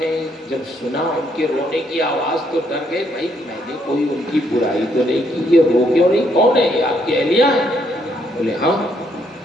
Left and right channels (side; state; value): both; normal; correlation 0.72